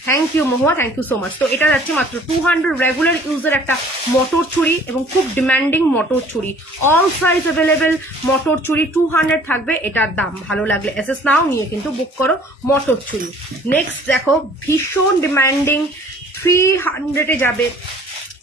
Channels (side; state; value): both; normal; correlation 0.53